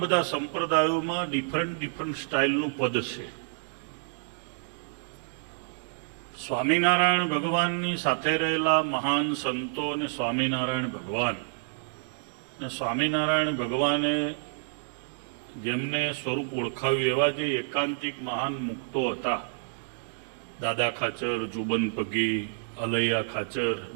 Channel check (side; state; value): left; silent; digital silence